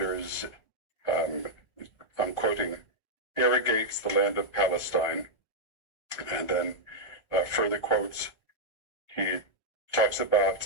I'm quoting, irrigates the land of Palestine. And then further quotes, he talks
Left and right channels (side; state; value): right; late; 1.4 ms